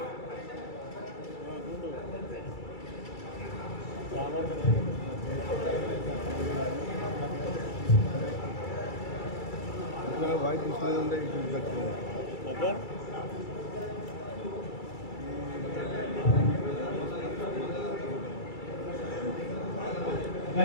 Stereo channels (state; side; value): late; right; 2.3 ms